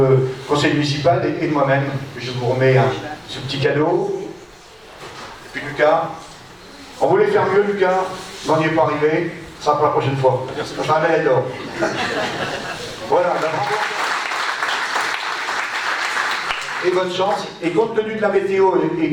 conseil municipal et de moi-même que je vous remets ce petit cadeau. Et puis Lucas, on voulait faire mieux Lucas, mais on n'y est pas arrivé, ça sera pour la prochaine fois. Ça sera un médaille d'or. Voilà, et bonne chance. Et compte tenu de la météo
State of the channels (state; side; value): identical; both; correlation 1.00